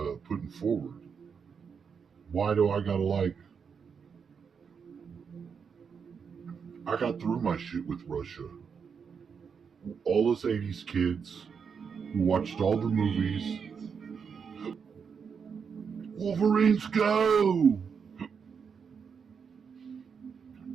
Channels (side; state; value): left; quieter; 6.3 dB